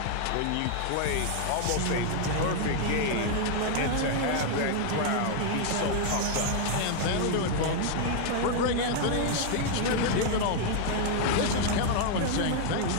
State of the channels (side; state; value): both; different; correlation 0.00